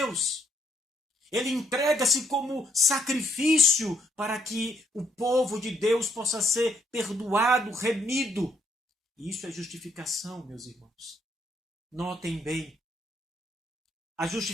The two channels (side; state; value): both; normal; correlation 0.71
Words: Ele entrega-se como sacrifício para que o povo de Deus possa ser perdoado, remido. E isso é justificação, meus irmãos. Notem bem. A